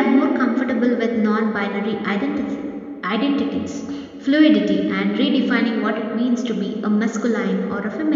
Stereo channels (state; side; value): identical; both; correlation 1.00